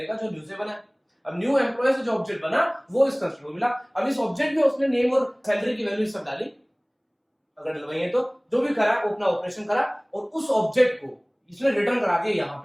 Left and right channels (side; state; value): both; identical; correlation 1.00